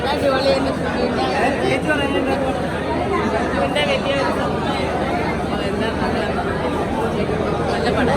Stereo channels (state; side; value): identical; both; correlation 1.00